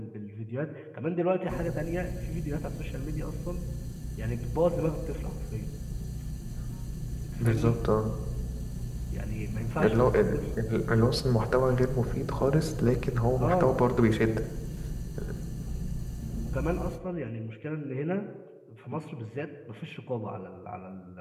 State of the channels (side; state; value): both; identical; correlation 1.00